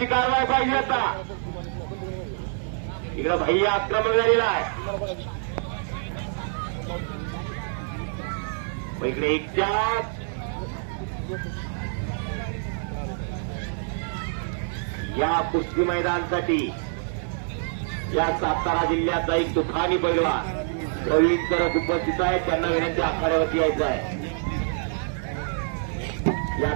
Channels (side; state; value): left; silent; 61 dB below the other